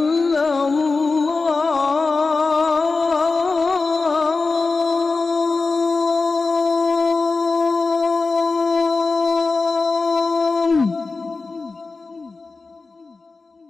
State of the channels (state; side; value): quieter; right; 3.9 dB